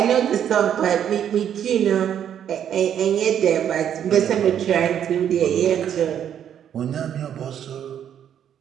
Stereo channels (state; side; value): quieter; left; 9.4 dB